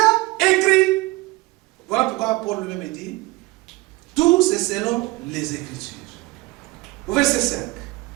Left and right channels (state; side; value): quieter; left; 21.7 dB